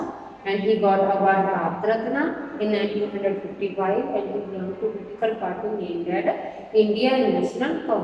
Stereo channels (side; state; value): both; identical; correlation 1.00